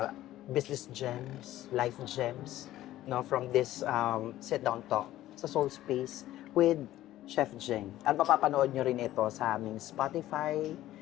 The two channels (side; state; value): right; quieter; 14.4 dB